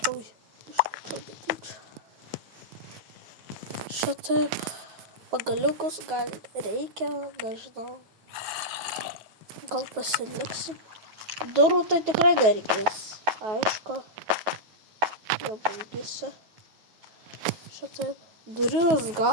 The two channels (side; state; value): left; late; 9.3 ms